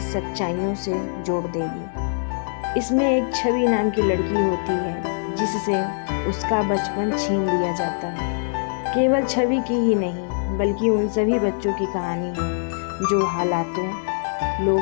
सच्चाइयों से जोड़ देगी। इसमें एक छवि नाम की लड़की होती है जिससे उसका बचपन छीन लिया जाता है। केवल छवि की ही नहीं, बल्कि उन सभी बच्चों की कहानी है जो हालातों,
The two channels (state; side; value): silent; right; 62 dB below the other